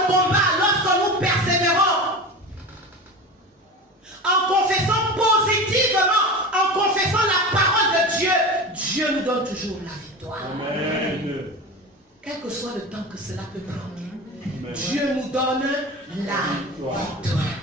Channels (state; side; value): normal; both; correlation 0.29